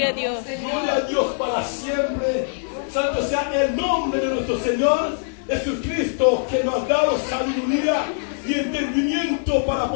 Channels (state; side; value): silent; right; digital silence